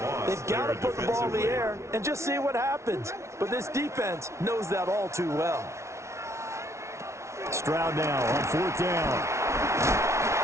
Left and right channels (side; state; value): left; late; 0.13 ms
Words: They've got to put the ball in the air and just see what happens. But this defense knows that all too well. Stroud now on 4th down.